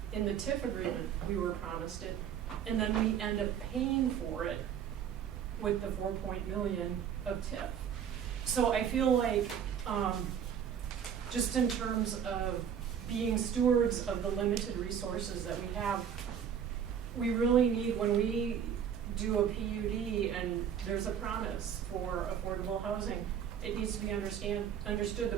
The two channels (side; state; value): left; quieter; 8.4 dB